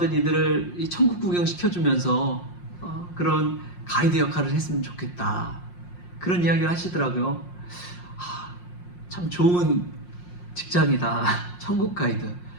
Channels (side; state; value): right; late; 5.6 ms